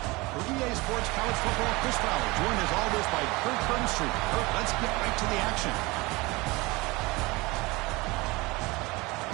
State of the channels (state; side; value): quieter; left; 23.3 dB